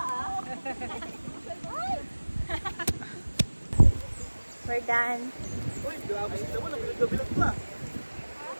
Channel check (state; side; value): inverted; both; correlation -1.00